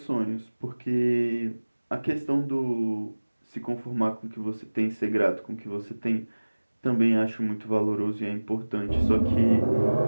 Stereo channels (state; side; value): inverted; both; correlation -1.00